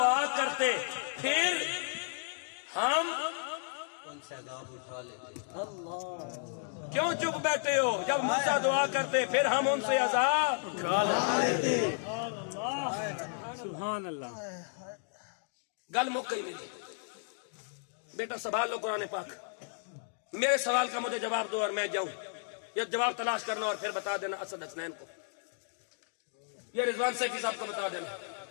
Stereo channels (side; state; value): right; silent; digital silence